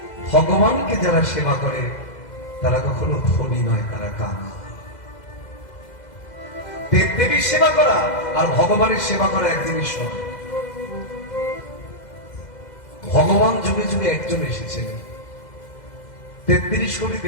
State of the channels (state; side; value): late; right; 2.0 ms